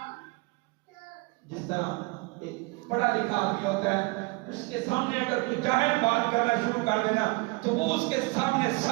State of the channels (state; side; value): quieter; left; 25.7 dB